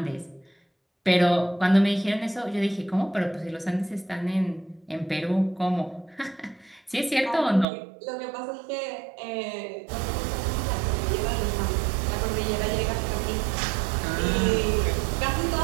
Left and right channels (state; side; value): drops out; left; at 7.7 s